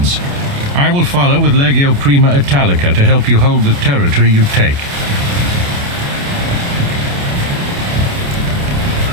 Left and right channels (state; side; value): late; left; 28 ms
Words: I will follow with Legio Prima Italica to help you hold the territory you take.